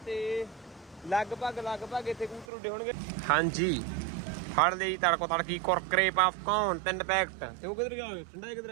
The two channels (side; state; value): left; drops out; at 2.5 s